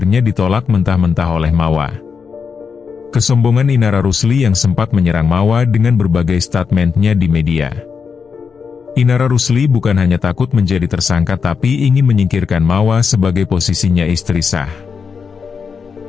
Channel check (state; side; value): quieter; right; 5.9 dB